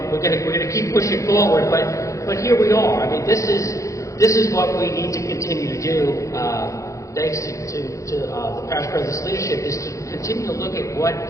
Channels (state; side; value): late; right; 0.15 ms